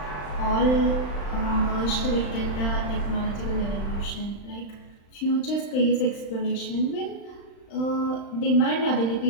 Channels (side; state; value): right; late; 35 ms